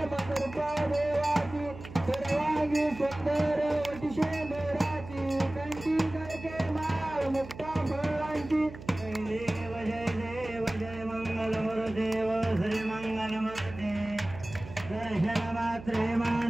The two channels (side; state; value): right; noise; hum, 14 dB below the sound